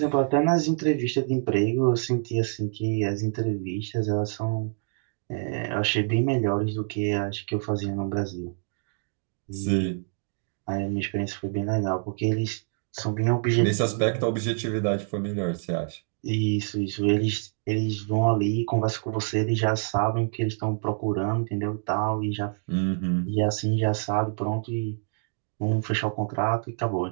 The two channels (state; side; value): silent; left; 58 dB below the other